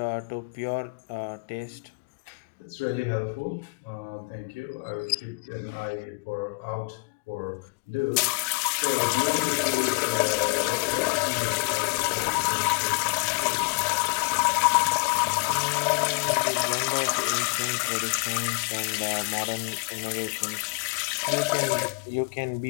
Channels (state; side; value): quieter; right; 34.0 dB